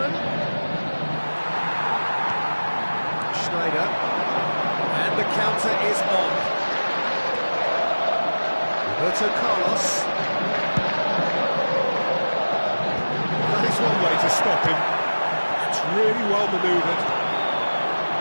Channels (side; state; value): both; inverted; correlation -1.00